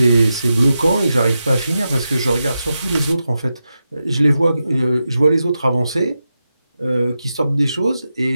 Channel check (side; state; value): both; inverted; correlation -0.90